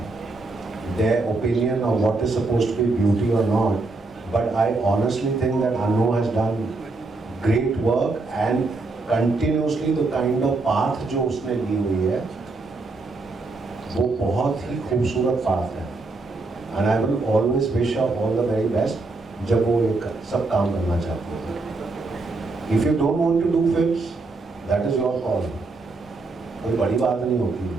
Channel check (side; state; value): left; quieter; 3.5 dB